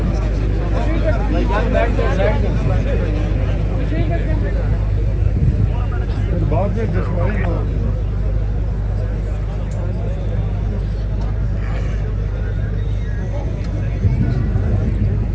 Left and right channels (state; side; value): identical; both; correlation 1.00